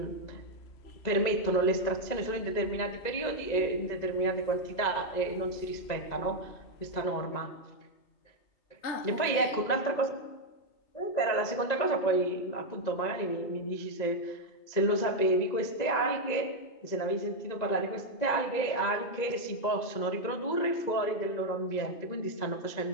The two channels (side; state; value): right; late; 2.0 ms